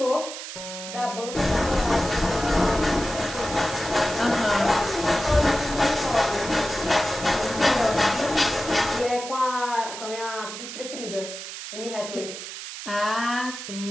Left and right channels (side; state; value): right; noise; hiss, 9 dB below the sound